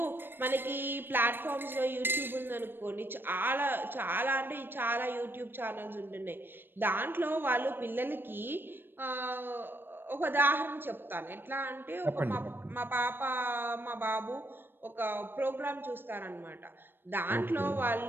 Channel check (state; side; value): late; left; 0.098 ms